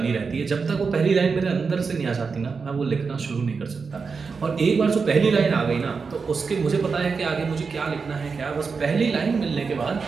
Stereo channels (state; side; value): quieter; left; 5.1 dB